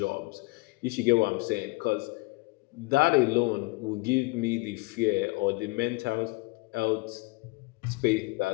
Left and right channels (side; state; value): right; quieter; 25.0 dB